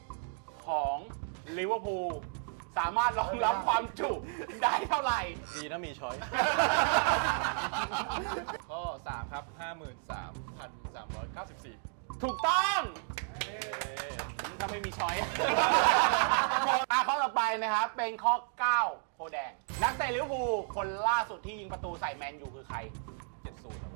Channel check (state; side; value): silent; left; 56 dB below the other